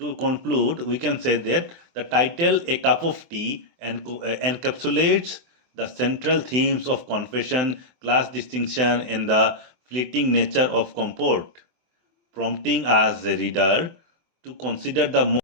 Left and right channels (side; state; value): left; late; 23 ms